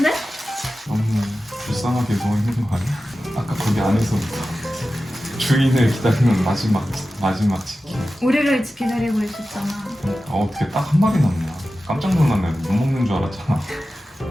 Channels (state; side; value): normal; both; correlation 0.94